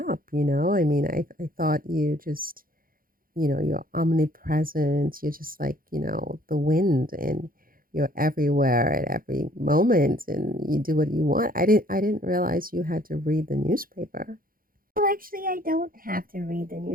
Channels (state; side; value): late; left; 0.41 ms